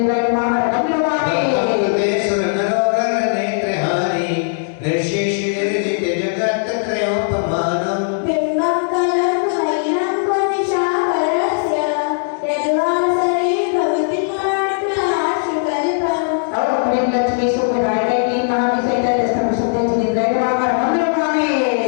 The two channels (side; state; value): right; silent; 67 dB below the other